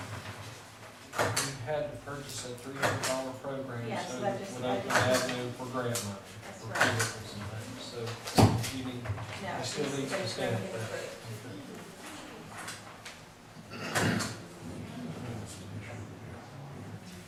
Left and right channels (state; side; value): identical; both; correlation 1.00